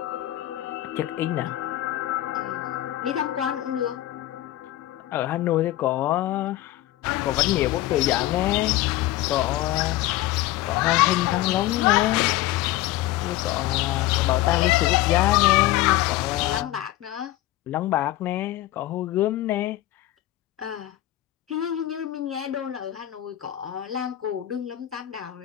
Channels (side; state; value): right; quieter; 15.4 dB